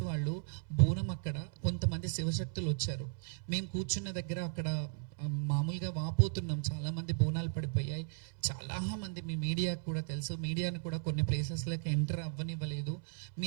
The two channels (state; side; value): silent; left; 54 dB below the other